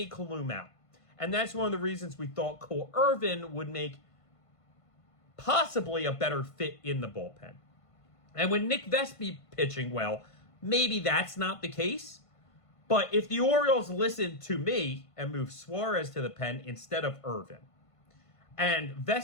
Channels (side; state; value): right; late; 1.5 ms